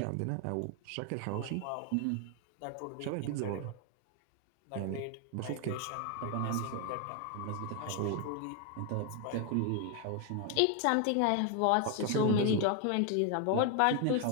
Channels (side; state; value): both; different; correlation 0.01